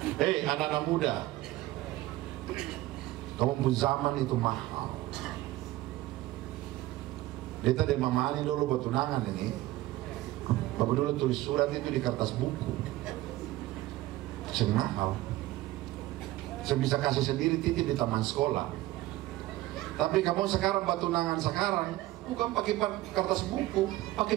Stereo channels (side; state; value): left; quieter; 17.0 dB